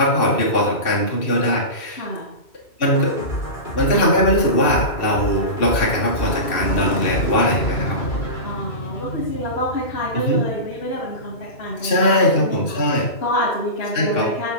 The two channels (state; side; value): late; right; 2.7 ms